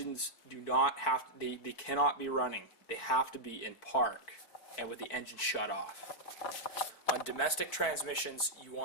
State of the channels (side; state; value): right; late; 4.5 ms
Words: do not have to, they cannot be running. They have to be in park and with the engine shut off. On domestic transmissions, you